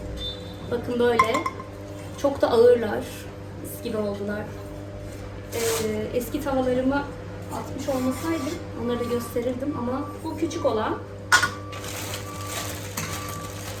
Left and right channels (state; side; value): identical; both; correlation 1.00